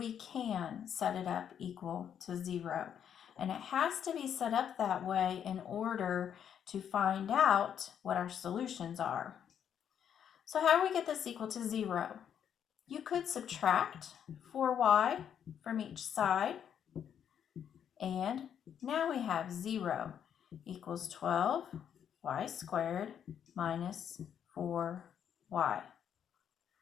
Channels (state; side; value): quieter; right; 8.8 dB